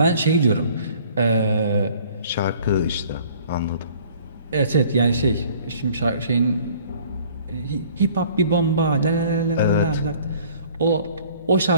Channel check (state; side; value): inverted; both; correlation -0.53